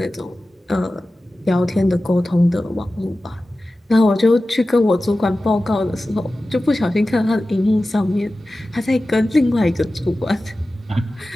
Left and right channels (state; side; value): normal; both; correlation 0.95